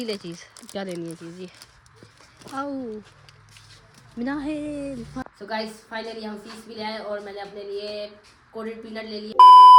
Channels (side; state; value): both; identical; correlation 1.00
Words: ले चीज, क्या लेनी है चीज ये। आओ मिनाहिल। सो गाइस फाइनली हम फीस भी ले आए और मैंने अपने लिए कोटेड पीनट ले लिए।